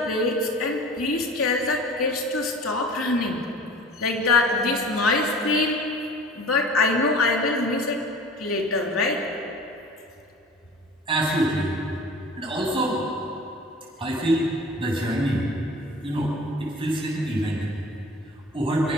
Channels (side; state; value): both; normal; correlation 0.42